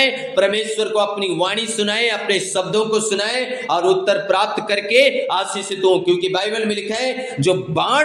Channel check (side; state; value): both; identical; correlation 1.00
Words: परमेश्वर को अपनी वाणी सुनाएं, अपने शब्दों को सुनाएं और उत्तर प्राप्त करके आशीषित हो। क्योंकि बाइबल में लिखा है, जो